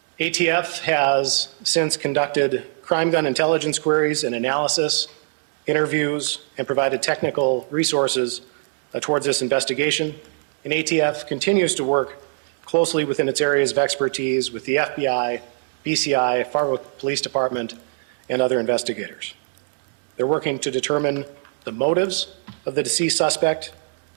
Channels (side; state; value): left; silent; 64 dB below the other